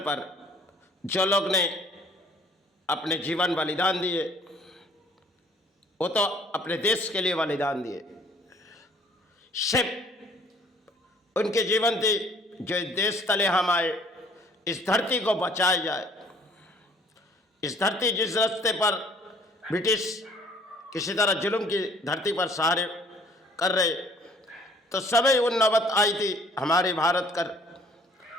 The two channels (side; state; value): both; normal; correlation 0.57